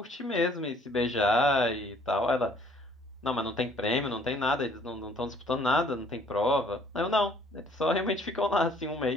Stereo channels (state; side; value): normal; both; correlation 0.59